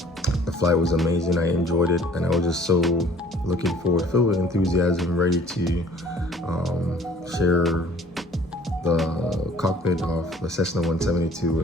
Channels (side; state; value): both; normal; correlation 0.53